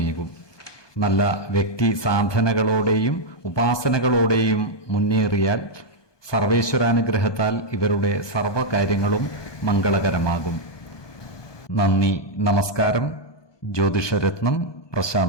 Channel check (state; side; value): late; right; 1.2 ms